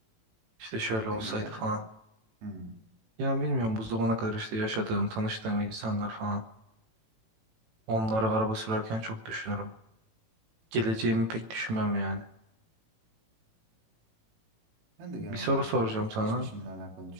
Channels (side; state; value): left; late; 18 ms